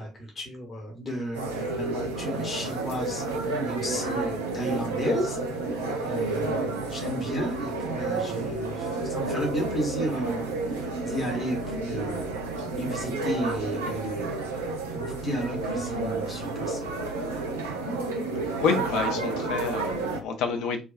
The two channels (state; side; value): normal; both; correlation 0.41